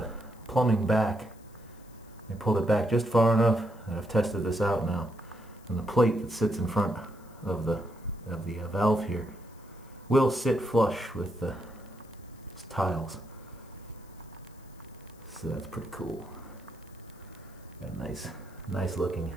plumbing back, we pulled it back just far enough, and I've tested this out now, and the plate that sits in front of the valve here will sit flush with the tiles. So that's pretty cool. Got a nice looking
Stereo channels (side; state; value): left; noise; hiss, 28 dB below the sound